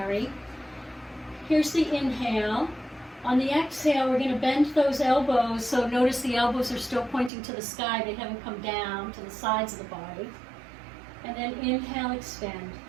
Here's the inhale. On the exhale, we're going to bend those elbows, so notice the elbows are still pointing to the sky. They haven't come down to the sides of the body. And then inhale, extend.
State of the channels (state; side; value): drops out; left; at 7.3 s